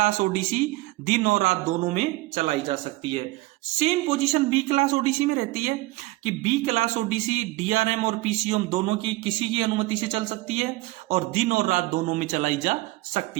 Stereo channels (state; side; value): quieter; left; 20.0 dB